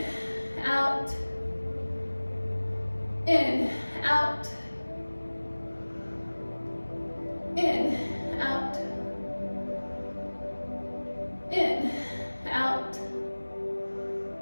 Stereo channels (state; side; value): inverted; both; correlation -1.00